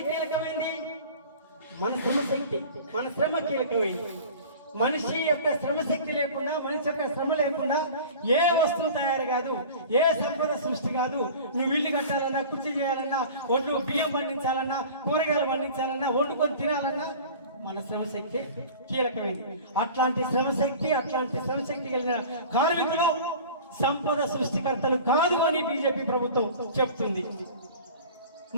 కీలకమైంది? మన శ్రమశక్తి, మన శ్రమ కీలకమైంది. మనిషి యొక్క శ్రమశక్తి లేకుండా, మనిషి యొక్క శ్రమ లేకుండా ఏ వస్తువు తయారు కాదు, ఏ సంపద సృష్టి కాదు. నువ్వు ఇల్లు కట్టాలన్నా, కుర్చీ చేయాలన్నా, ఒడ్లు బియ్యం పండించాలన్నా, కూరగాయలు పండించాలన్నా, వండుకొని తినాలన్నా మన శ్రమశక్తి కీలకమైంది. అట్లాంటి శ్రమశక్తి కలిగిన కార్మికులు సంపద సృష్టికర్తలు కాదు అని బీజేపీ ప్రభుత్వం చెప్తుంది.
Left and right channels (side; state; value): both; inverted; correlation -0.40